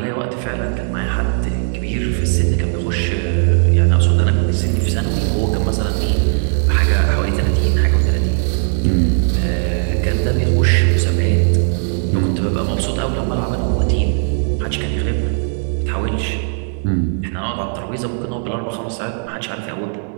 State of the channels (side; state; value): left; silent; 66 dB below the other